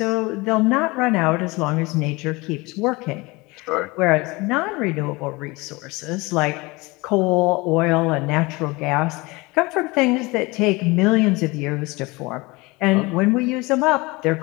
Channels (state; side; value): quieter; right; 24.0 dB